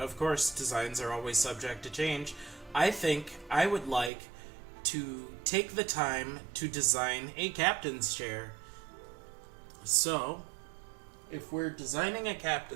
course, designs are always subject to change. I think I would like to take the time to design a captain's chair. So, if we're designing a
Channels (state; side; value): drops out; left; at 4.1 s